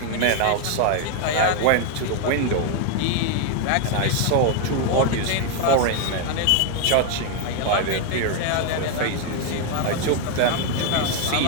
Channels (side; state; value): both; different; correlation 0.01